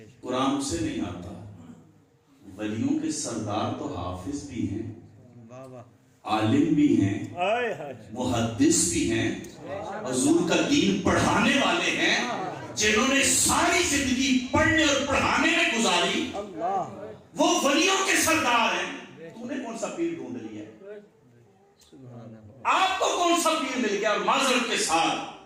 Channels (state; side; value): identical; both; correlation 1.00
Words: قرآن اسے نہیں آتا. ولیوں کے سردار تو حافظ بھی ہیں، عالم بھی ہیں، محدث بھی ہیں، حضور کا دین پڑھانے والے ہیں، جنہوں نے ساری زندگی پڑھنے اور پڑھانے میں گزاری. وہ ولیوں کے سردار ہیں. تو نے کون سا پیر ڈھونڈ لیا؟ آپ کو کون سا پیر مل گیا؟ اور معذرت کے ساتھ